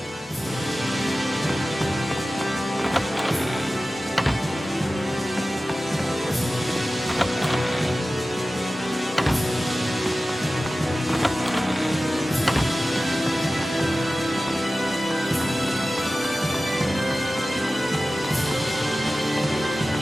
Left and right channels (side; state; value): both; normal; correlation 0.95